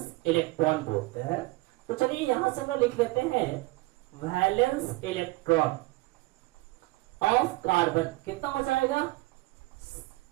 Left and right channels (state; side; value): quieter; left; 21.8 dB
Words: इलेक्ट्रॉन बोलते हैं. तो चलिए यहां से हम लिख लेते हैं वैलेंस इलेक्ट्रॉन ऑफ कार्बन. कितना हो जाएगा?